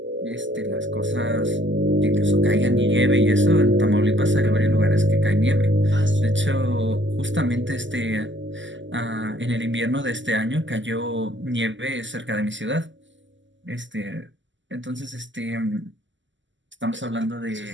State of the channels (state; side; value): late; left; 0.54 ms